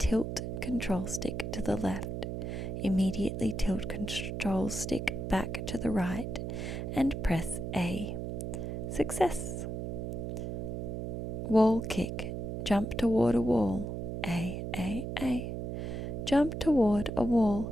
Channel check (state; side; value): noise; right; hum, 4 dB below the sound